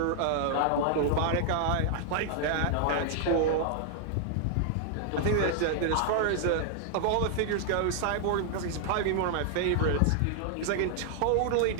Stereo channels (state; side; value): different; both; correlation 0.00